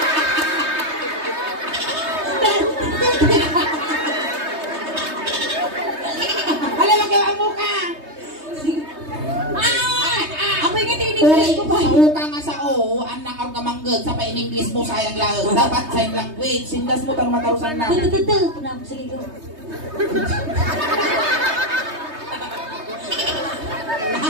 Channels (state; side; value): late; left; 3.2 ms